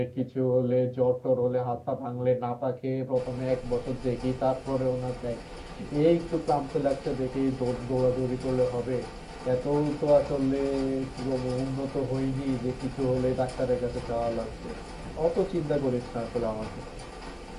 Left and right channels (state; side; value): identical; both; correlation 1.00